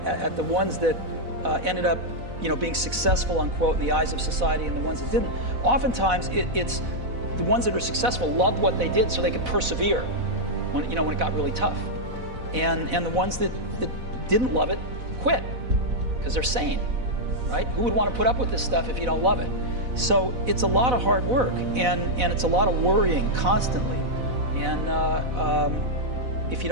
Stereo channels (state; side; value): late; left; 4.0 ms